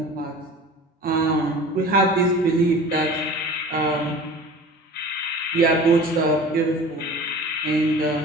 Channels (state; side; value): normal; both; correlation 0.41